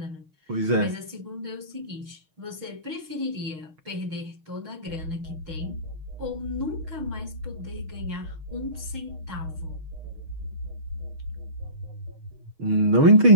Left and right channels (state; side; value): late; left; 6.4 ms